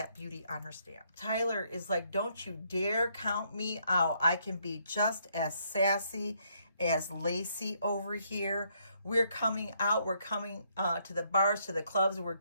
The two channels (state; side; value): inverted; both; correlation -0.72